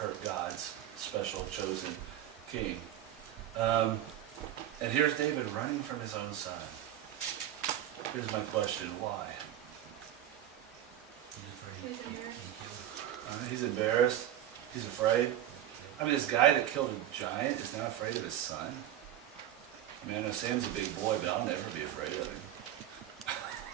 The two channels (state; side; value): quieter; left; 11.5 dB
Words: God's special chosen king. And here's David running from his own son. Here's my question, why? He's embarrassed. He's afraid. I mean, this guy that killed a giant is now afraid of his son. I mean, I know Sam's a big boy, but I'll never be afraid of him.